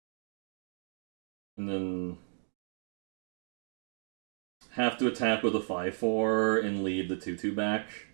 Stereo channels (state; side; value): silent; left; digital silence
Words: And then have to attack with a 5/4 and lead the 2/2 back,